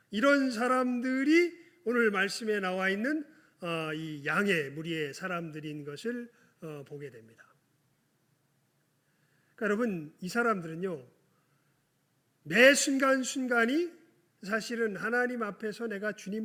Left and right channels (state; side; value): identical; both; correlation 1.00